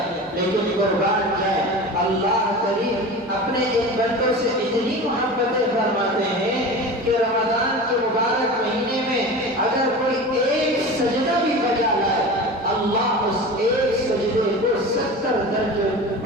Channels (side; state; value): both; normal; correlation 0.32